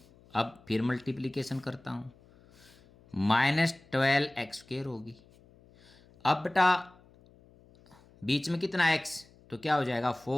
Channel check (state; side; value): noise; left; hum, 27 dB below the sound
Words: अब फिर मल्टीप्लिकेशन करता हूँ, -12x² होगी। अब बेटा बीच में कितना x, तो क्या हो जाएगा